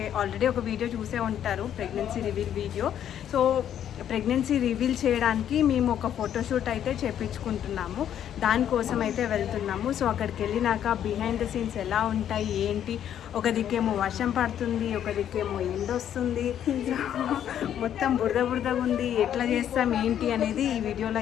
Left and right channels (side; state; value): right; quieter; 10.0 dB